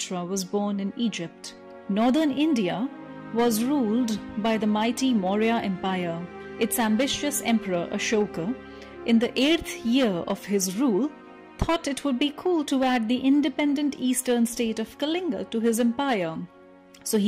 was born in Egypt, northern India was ruled by the mighty Maurya Empire. Its ambitious emperor Ashoka, in the 8th year of his rule, thought it would be cool to add the independent eastern state of Kalinga to his empire. So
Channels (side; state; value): both; identical; correlation 1.00